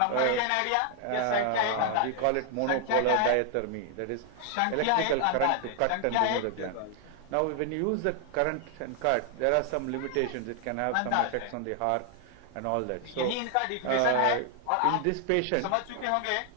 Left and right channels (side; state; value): both; different; correlation 0.00